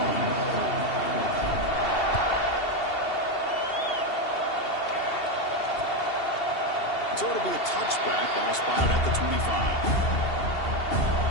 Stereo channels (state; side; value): late; right; 2.7 ms